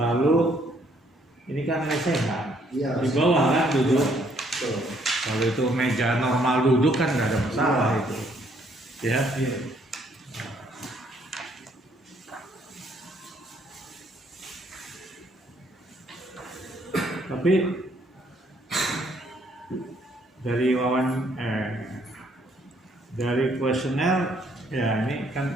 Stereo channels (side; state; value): both; normal; correlation 0.67